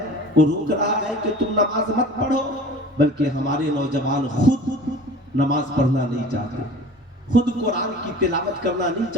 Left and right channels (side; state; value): both; normal; correlation 0.42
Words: وہ روک رہا ہے کہ تم نماز مت پڑھو، بلکہ ہمارے نوجوان خود نماز پڑھنا نہیں چاہتے، خود قرآن کی تلاوت کرنا نہیں